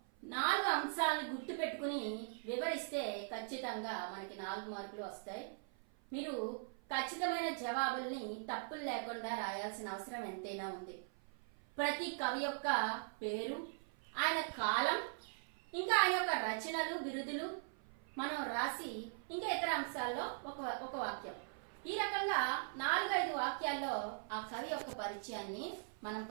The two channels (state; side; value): silent; left; 50 dB below the other